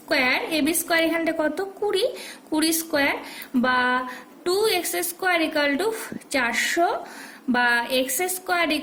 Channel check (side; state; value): both; identical; correlation 1.00